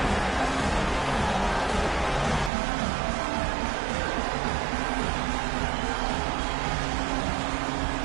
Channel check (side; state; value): left; drops out; at 2.5 s